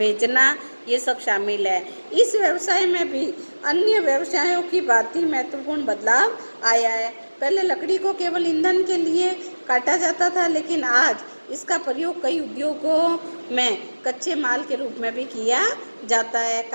ये सब शामिल है। इस व्यवसाय में भी अन्य व्यवसायों की भांति महत्वपूर्ण बदलाव आया है। पहले लकड़ी को केवल ईंधन के लिए काटा जाता था, लेकिन आज इसका प्रयोग कई उद्योगों में कच्चे माल के रूप में भी किया जाता है।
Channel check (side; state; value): both; inverted; correlation -1.00